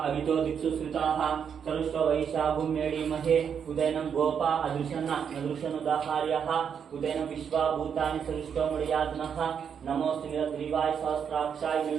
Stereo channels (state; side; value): quieter; left; 7.4 dB